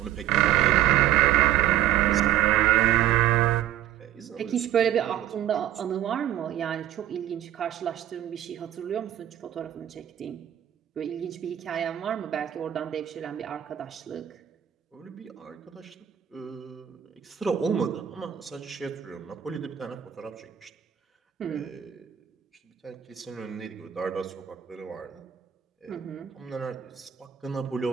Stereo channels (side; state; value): left; quieter; 11.4 dB